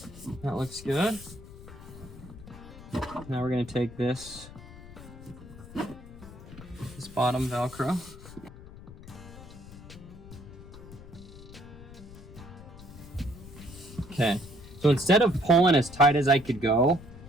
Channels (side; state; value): left; noise; rumble, 16 dB below the sound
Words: That looks good. Now we're gonna take this bottom Velcro. Okay, so instead of pulling as tight as I could go,